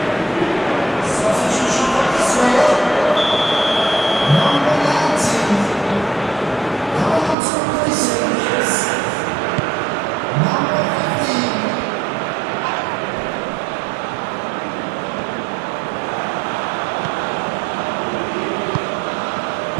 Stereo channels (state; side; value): drops out; left; at 7.4 s